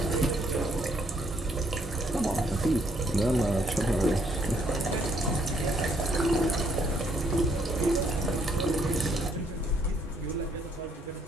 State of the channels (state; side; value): normal; both; correlation 0.69